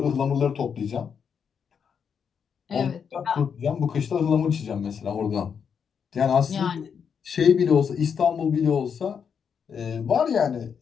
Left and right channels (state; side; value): quieter; right; 6.9 dB